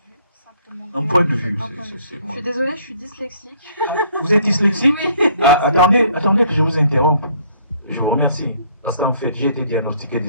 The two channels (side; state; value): both; inverted; correlation -0.62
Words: simplement. Un point de vue, c'est Je suis désolée, je suis dyslexique. Vous êtes dyslexique? Oui. Attendez que je vous interrompe. Je vous remercie. Parce qu'en fait, j'ai été diagnostiqué